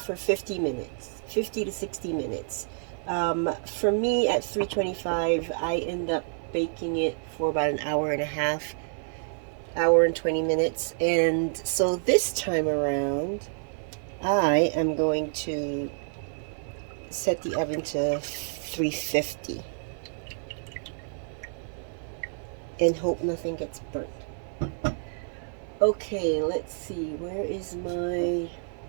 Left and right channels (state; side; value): silent; left; 59 dB below the other